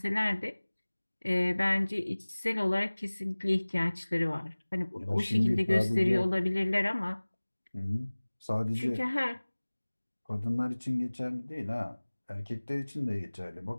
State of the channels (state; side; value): inverted; both; correlation -1.00